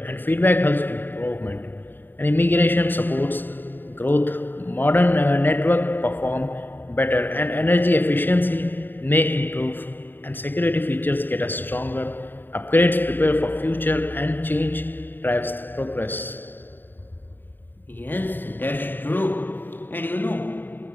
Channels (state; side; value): late; right; 0.093 ms